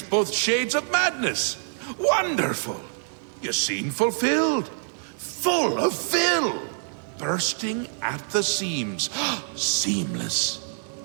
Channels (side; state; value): left; silent; digital silence